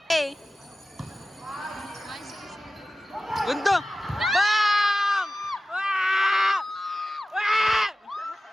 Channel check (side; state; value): both; normal; correlation 0.95